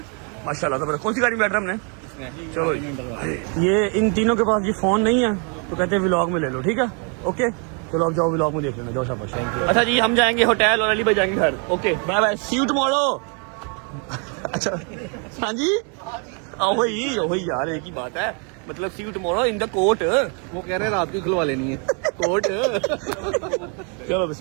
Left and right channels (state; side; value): quieter; left; 38.0 dB